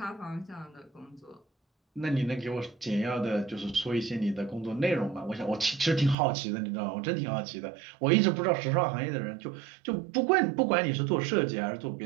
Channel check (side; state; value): left; drops out; at 6.2 s